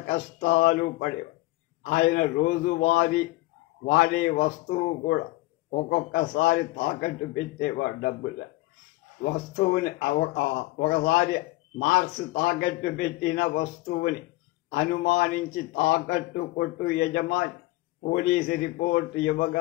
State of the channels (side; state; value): right; quieter; 19.7 dB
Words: పడేవాడు. ఆయన రోజువారీ వాడే వస్తువు కూడా ఒక్కొక్కసారి తాకట్టు పెట్టేవాడు. డబ్బులు వస్తువుని ఒకసారి మార్క్స్ తాకట్టు పెట్టిన వస్తువుని అనుమానించి తాకట్టు కొట్టు యజమాని పోలీసు రిపోర్టు